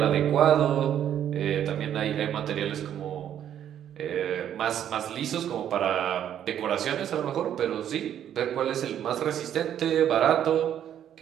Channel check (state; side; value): quieter; left; 10.1 dB